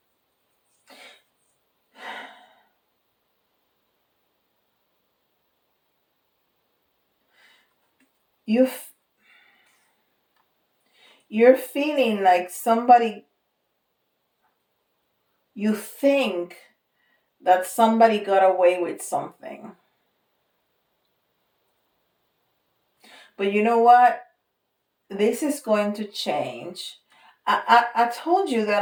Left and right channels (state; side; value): identical; both; correlation 1.00